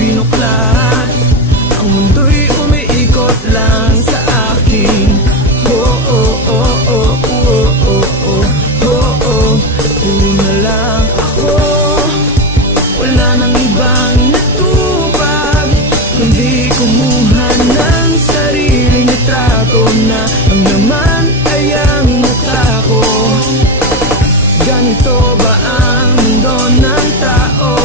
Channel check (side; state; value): both; normal; correlation 0.16